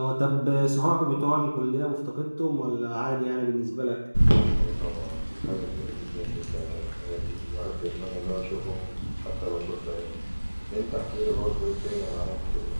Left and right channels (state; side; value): inverted; both; correlation -1.00